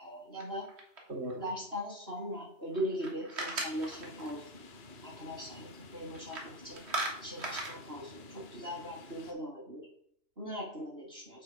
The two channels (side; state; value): left; late; 3.1 ms